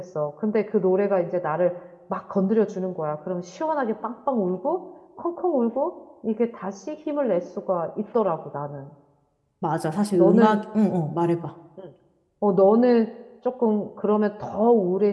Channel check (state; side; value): identical; both; correlation 1.00